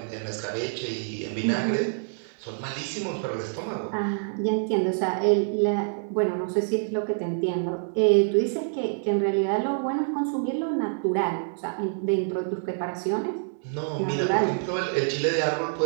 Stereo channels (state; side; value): silent; left; digital silence